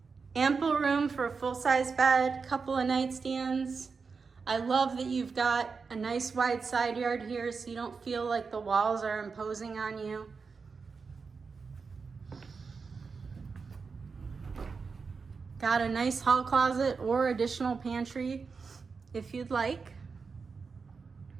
Ample room for a full-size bed, couple of nightstands. I love that you've got a nice wide side yard here so you don't feel like the walls are imposing on you. Got a nice hall closet or additional pantry if you'd like.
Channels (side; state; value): left; quieter; 5.0 dB